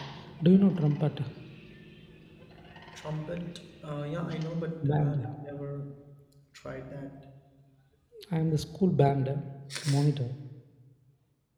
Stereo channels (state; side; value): identical; both; correlation 1.00